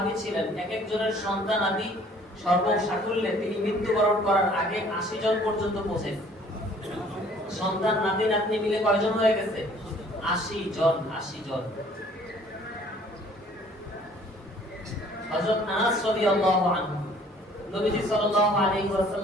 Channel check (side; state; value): both; normal; correlation 0.56